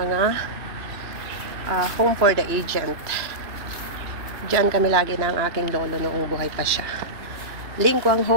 home for the agent. Diyan kami lagi ng aking lolo noong buhay pa siya. Lingkwang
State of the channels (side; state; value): left; late; 2.9 ms